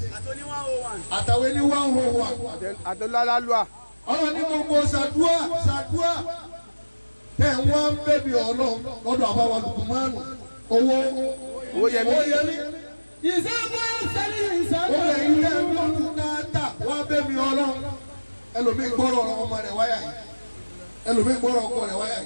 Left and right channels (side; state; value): both; inverted; correlation -1.00